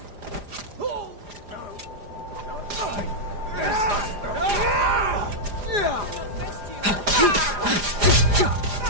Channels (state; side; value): late; left; 4.9 ms